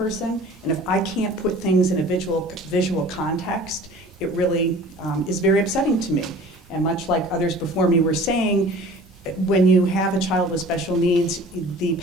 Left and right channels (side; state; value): both; normal; correlation 0.45